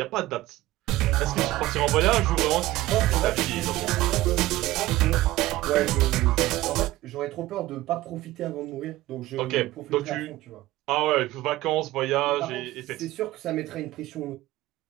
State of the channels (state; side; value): quieter; left; 16.9 dB